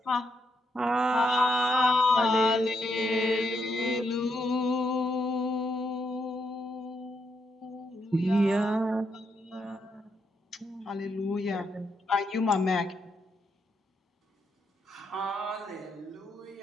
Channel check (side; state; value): both; normal; correlation 0.79